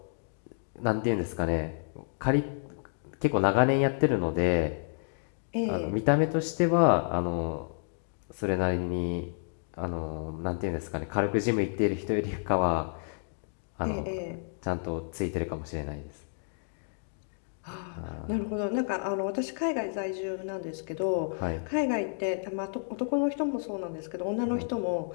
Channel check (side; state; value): right; silent; digital silence